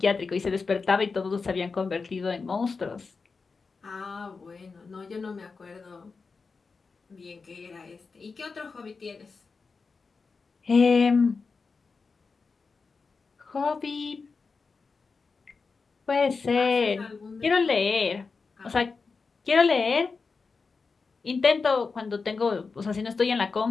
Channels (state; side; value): quieter; right; 4.6 dB